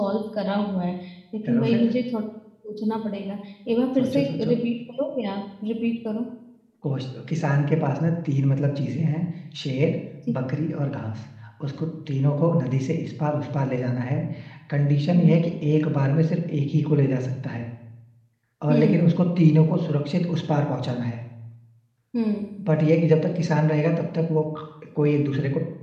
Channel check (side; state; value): both; identical; correlation 1.00